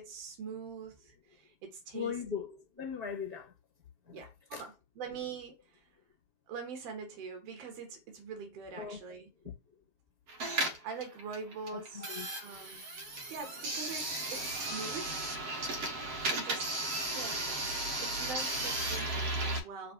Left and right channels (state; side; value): late; left; 7.6 ms